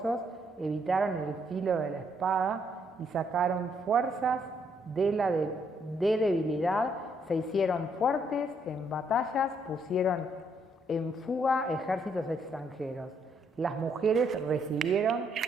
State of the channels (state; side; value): normal; both; correlation 0.72